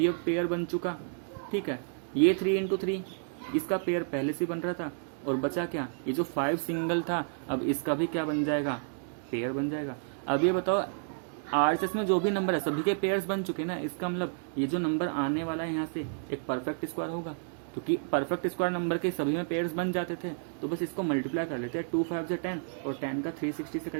अब पेयर बन चुका। ठीक है, ये 3 × 3 इसका पेयर पहले से बन रहा था, और बचा क्या, ये जो 5 सिंगल था अब इसका भी क्या बन जाएगा, पेयर बन जाएगा। अब ये बताओ आरएचएस में जो भी नंबर है सभी के पेयर्स बन चुके ना, इसका मतलब ये जो नंबर आने वाला है यहाँ से एक परफेक्ट स्क्वायर होगा, क्योंकि परफेक्ट स्क्वायर नंबर के सभी में पेयर्स बन जाते थे। तो बस इसको मल्टीप्लाई कर लेते हैं, 2 5 जा 10, और 10 का 360 से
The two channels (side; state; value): left; silent; digital silence